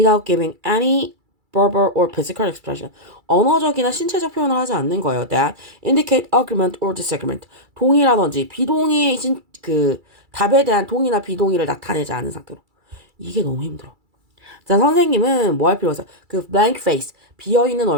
giving any verbal or physical expression. 언어적이나 신체적 표현을 하지 않는 거예요. That indicate agreement or disagreement. 동의라든지 비동의의 그 답에 대한 동의나 비동의를 나타내지 않은 상태로. 이게 너무 힘들어. 자, 선생님은 뭐 할 필요가 있어요? 그 blank face, 비어있는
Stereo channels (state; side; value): late; left; 2.3 ms